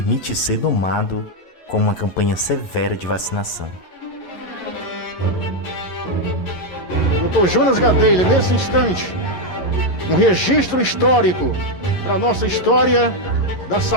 ser domado com uma campanha severa de vacinação. Dr. Jonas Gadelha, nesse instante, um registro histórico para a nossa história da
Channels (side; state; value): right; late; 11 ms